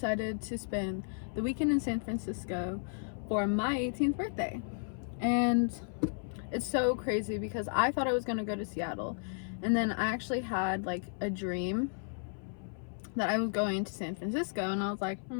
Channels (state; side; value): silent; right; 55 dB below the other